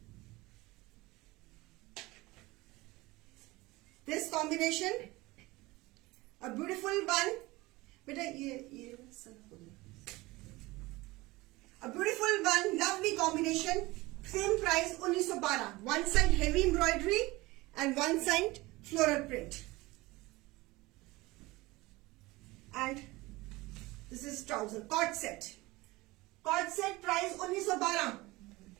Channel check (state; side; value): quieter; left; 21.0 dB